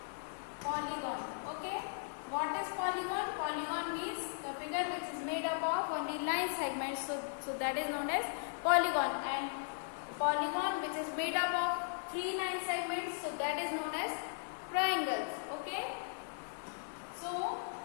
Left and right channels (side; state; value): right; silent; 53 dB below the other